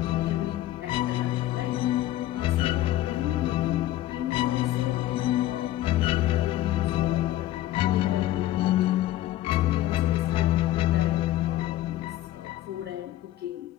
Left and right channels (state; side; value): quieter; right; 14.2 dB